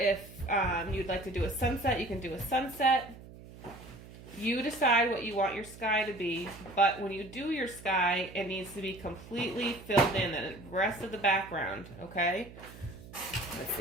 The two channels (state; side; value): noise; right; hum, 17 dB below the sound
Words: you'd like to do a sunset, you can do a sunset. You decide what you want your sky to be, but when you do your sky, it needs to be completely filled in, the rest of the background, okay? Let's